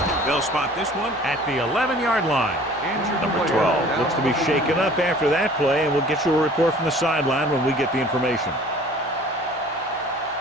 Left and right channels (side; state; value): both; normal; correlation 0.49